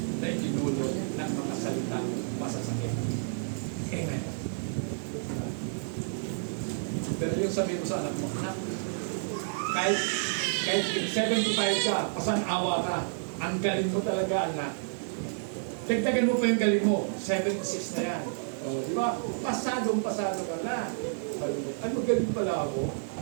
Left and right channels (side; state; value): left; silent; digital silence